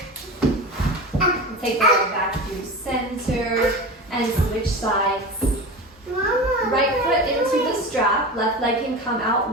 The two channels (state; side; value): normal; both; correlation 0.28